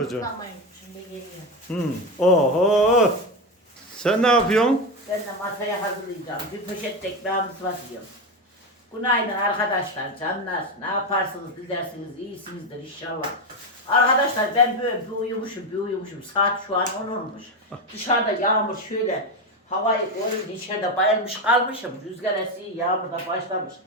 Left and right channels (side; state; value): both; normal; correlation 0.14